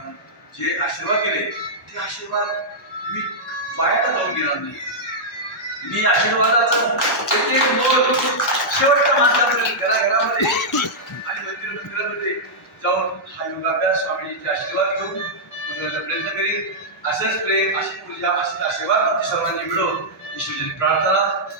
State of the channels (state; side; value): normal; both; correlation -0.09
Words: जे आशीर्वाद केले ते आशीर्वाद मी वायाला जाऊन गेला नाही. मी आशीर्वादाचा एक मोल शेवटच्या माणसापर्यंत घराघरामध्ये आणि मंदिरामध्ये जाऊन हा योगाभ्यास स्वामीजींचे आशीर्वाद घेऊन बोलण्याचा प्रयत्न करीन. असंच प्रेम, अशी पूजा, असे आशीर्वाद सर्वांनी मिळवून ईश्वराची प्रार्थना.